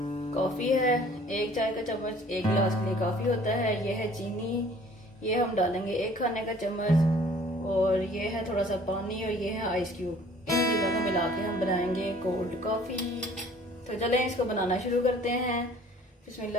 कॉफ़ी है 1 चाय का चम्मच, 1 गिलास के लिए काफ़ी होता है। ये है चीनी, ये हम डालेंगे 1 खाने का चम्मच, और ये है थोड़ा सा पानी, और ये है आइस क्यूब। इन चीज़ों को मिला के हम बनाएंगे कोल्ड कॉफ़ी। तो चलें इसको बनाना शुरू करते हैं।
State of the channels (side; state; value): both; normal; correlation 0.53